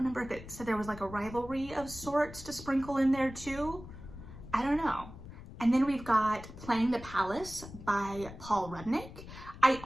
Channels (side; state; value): left; noise; rumble, 14 dB below the sound